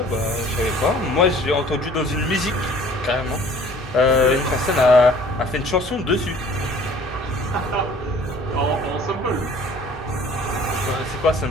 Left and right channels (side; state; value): both; normal; correlation 0.52